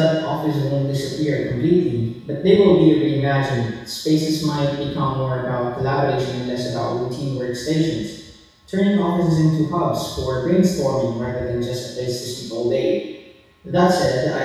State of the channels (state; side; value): identical; both; correlation 1.00